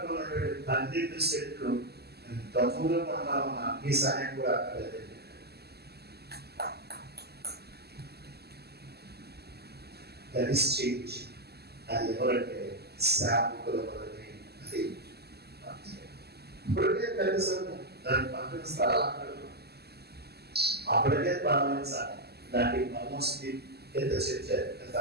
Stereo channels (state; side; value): late; left; 0.47 ms